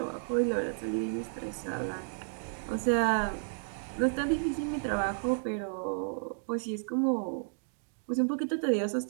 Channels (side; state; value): left; silent; digital silence